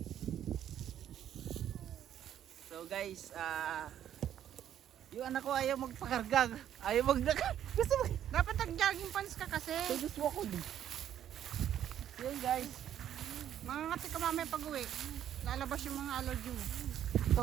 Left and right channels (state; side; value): quieter; left; 10.6 dB